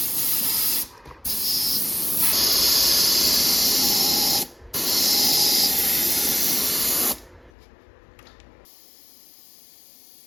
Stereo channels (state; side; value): drops out; right; at 7.5 s